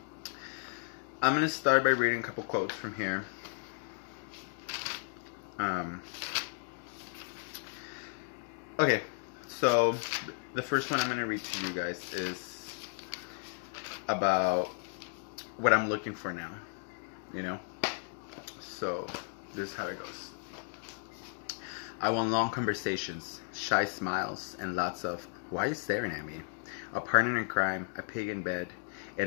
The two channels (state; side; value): silent; right; 55 dB below the other